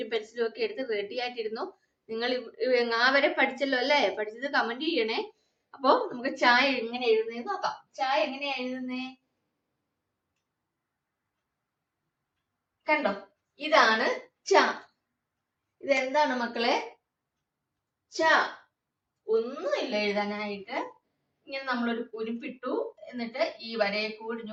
പെൻസിലും ഒക്കെ എടുത്ത് റെഡി ആയിട്ടിരുന്നു. നിങ്ങൾ ങ വരെ പഠിച്ചല്ലോ അല്ലേ? പഠിച്ചത് കമന്റ് ചെയ്യണേ. അപ്പൊ നമുക്ക് ച എങ്ങനെ എഴുതുന്നതെന്ന് നോക്കാം. ച എങ്ങനെയാ എഴുതുന്നേ? കണ്ടോ? ഇതാണ് ച. ഇതെന്താണ് മക്കളെ? ച. ഒന്നുമില്ല എഴുതാനായിട്ട്. ഇങ്ങനെ നമ്മളൊരു കുരിപ്പിട്ടു, എന്നിട്ട് ഈ വരയെ കൂടി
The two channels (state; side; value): identical; both; correlation 1.00